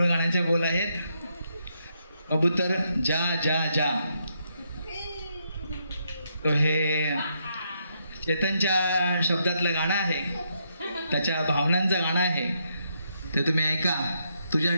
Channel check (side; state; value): both; inverted; correlation -0.78